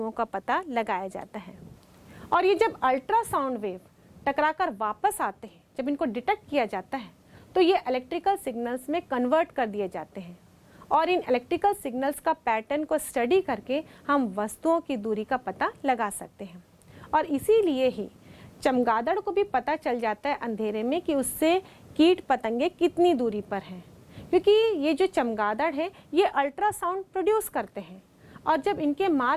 का पता लगाया जाता है। और ये जब अल्ट्रासाउंड वेव टकराकर वापस आते हैं, जब इनको डिटेक्ट किया जाता है, तो ये इलेक्ट्रिकल सिग्नल्स में कन्वर्ट कर दिए जाते हैं और इन इलेक्ट्रिकल सिग्नल्स का पैटर्न को स्टडी करके हम वस्तुओं की दूरी का पता लगा सकते हैं। और इसीलिए ही चमगादड़ को भी पता चल जाता है अंधेरे में कि उससे कीट पतंगे कितनी दूरी पर हैं, क्योंकि ये जो चमगादड़ है ये अल्ट्रासाउंड प्रोड्यूस करते हैं और जब इनके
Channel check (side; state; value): both; identical; correlation 1.00